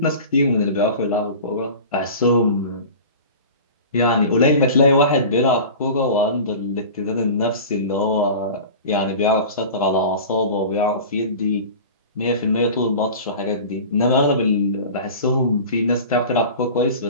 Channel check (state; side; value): inverted; both; correlation -0.36